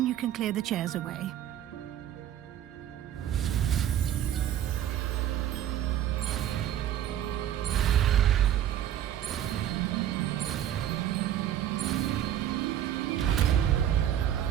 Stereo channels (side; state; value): left; quieter; 11.0 dB